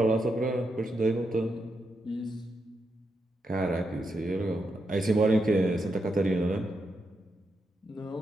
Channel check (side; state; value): both; normal; correlation 0.84